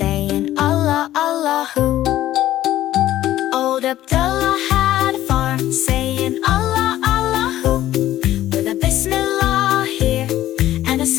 Allah, Allahu. Old Abdullah had a farm, saying Allah, Allahu, with a Bismillah here and a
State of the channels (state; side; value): quieter; right; 13.7 dB